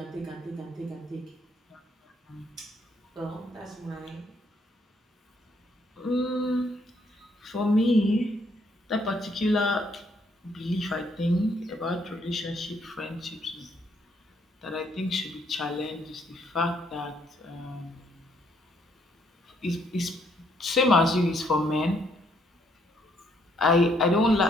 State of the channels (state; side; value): normal; both; correlation 0.70